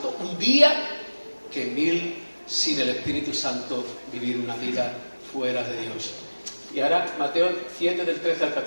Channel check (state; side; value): inverted; both; correlation -1.00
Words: Un día que 1000 sin el Espíritu Santo vivir una vida fuera de Dios. Y ahora Mateo 7 del 13 al